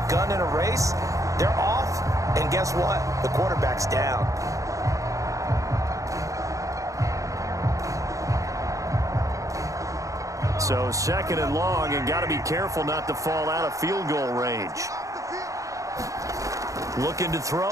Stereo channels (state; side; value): late; left; 0.16 ms